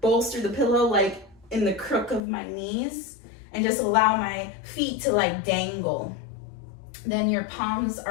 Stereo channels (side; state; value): right; drops out; at 2.2 s